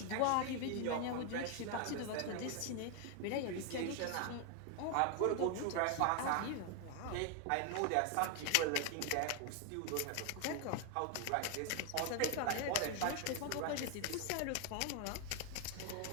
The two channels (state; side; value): different; both; correlation 0.00